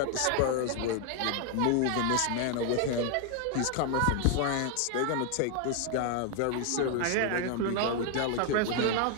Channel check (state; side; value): different; both; correlation 0.00